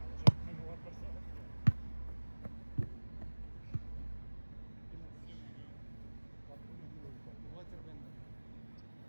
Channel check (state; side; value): inverted; both; correlation -1.00